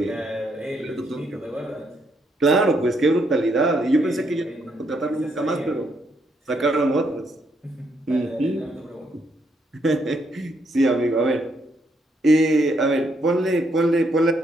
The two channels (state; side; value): normal; both; correlation 0.75